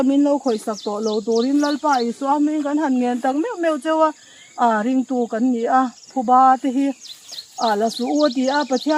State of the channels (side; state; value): both; identical; correlation 1.00